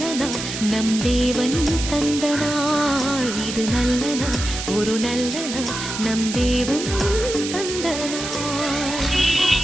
நாள், நம் தேவன் தந்த நாள். இது நல்ல நாள், ஒரு நல்ல நாள், நம் தேவன்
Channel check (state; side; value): noise; right; hiss, 6 dB below the sound